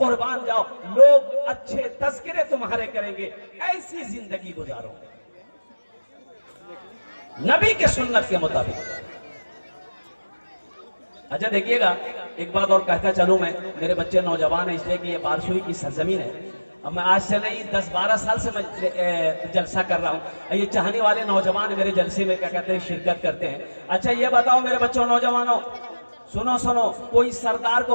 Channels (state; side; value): inverted; both; correlation -1.00